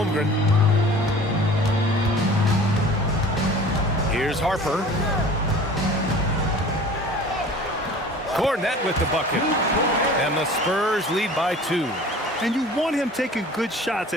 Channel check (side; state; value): both; normal; correlation 0.44